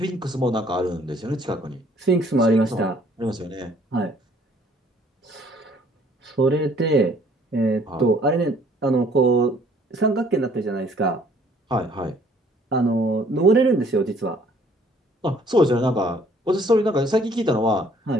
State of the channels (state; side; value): normal; both; correlation 0.59